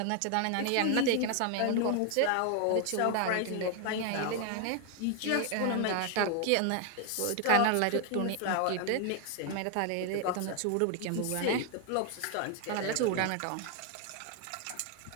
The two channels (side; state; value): both; different; correlation 0.01